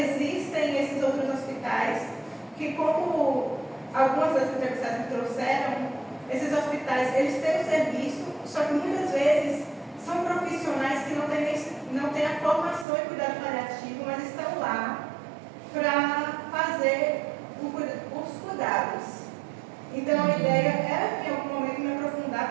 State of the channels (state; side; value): drops out; left; at 12.9 s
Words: esses outros hospitais que, como algumas das entrevistadas me trouxeram, esses hospitais, eles têm o serviço, só que muitas vezes são profissionais que não têm a formação em cuidado paliativo, mas estão lá para fazer os cuidados. Então a ideia é, em algum momento, me